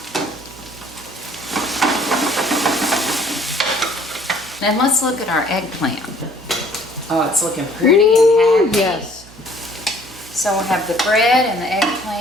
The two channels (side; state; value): right; noise; hum, 22 dB below the sound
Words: Then let's look at our eggplant. Oh, it's looking pretty and happy. Yes. So we'll have the bread and the